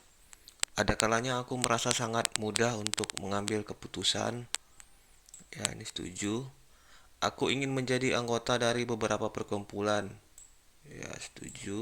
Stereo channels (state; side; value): identical; both; correlation 1.00